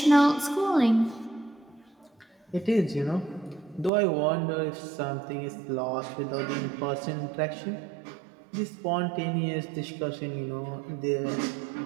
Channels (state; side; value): drops out; left; at 3.9 s